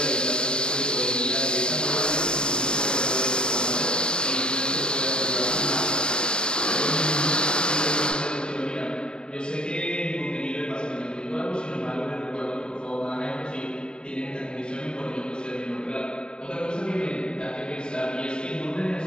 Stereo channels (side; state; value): right; late; 0.053 ms